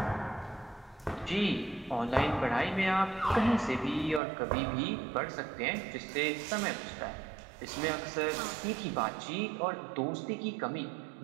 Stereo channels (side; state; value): left; drops out; at 4.2 s